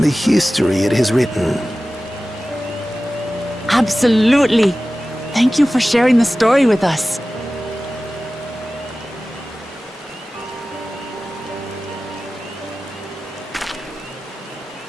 the history it has written. Absolutely. Thank you for sharing the story with us.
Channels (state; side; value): normal; both; correlation 0.96